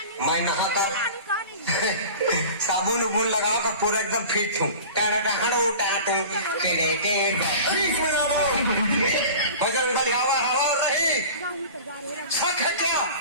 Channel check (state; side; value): inverted; both; correlation -0.38